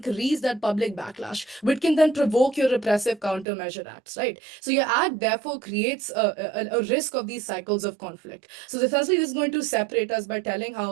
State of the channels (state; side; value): drops out; left; at 3.5 s